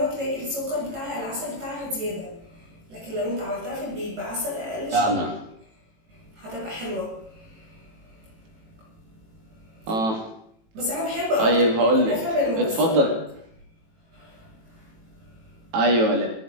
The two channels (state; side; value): late; left; 18 ms